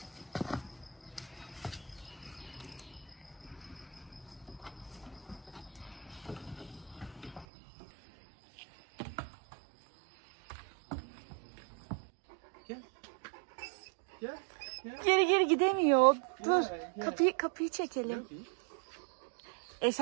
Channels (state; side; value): drops out; left; at 7.5 s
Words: Gel. Gel. Gel. Geri gidemiyor. Dur. Gel. Kapıyı çekelim.